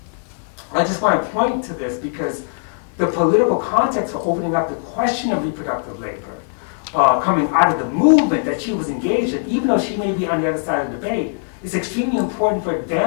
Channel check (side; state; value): right; silent; 61 dB below the other